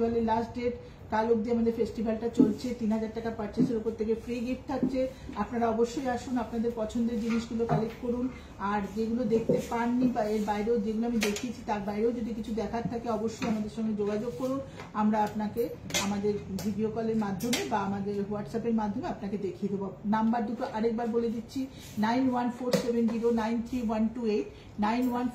লাস্ট ডেট। কাল অব্দি আমাদের ফেস্টিভ্যালটা চলছে। 3000 টাকা পারচেসের উপর থেকে ফ্রি গিফট থাকছে। আপনারা অবশ্যই আসুন, আপনাদের পছন্দের জিনিসগুলো কালেক্ট করুন। আর যেগুলো দেখতে পাননি বা এর বাইরেও যেগুলো আমি দেখিয়েছি তার বাইরেও যদি কিছু দেখার থাকে অবশ্যই আমাদের সঙ্গে যোগাযোগ করুন। আমরা আপনাকে আমাদের ভিডিও কলের মাধ্যমে বা আমাদের হোয়াটসঅ্যাপের মাধ্যমে আপনাকে দেখিয়ে দেবো। নাম্বার দুটো আরেকবার বলে দিচ্ছি, 9147093128,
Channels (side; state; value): both; identical; correlation 1.00